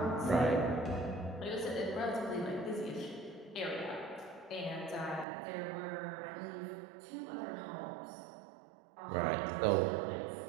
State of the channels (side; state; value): left; drops out; at 5.2 s